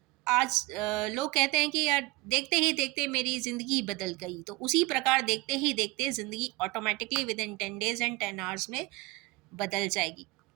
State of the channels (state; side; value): quieter; left; 22.0 dB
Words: आज लोग कहते हैं कि यार देखते ही देखते मेरी ज़िंदगी बदल गई, तो उसी प्रकार देखते ही देखते ज़िंदगी automatically with in 10 days and 10 hours में बदल जाएगी।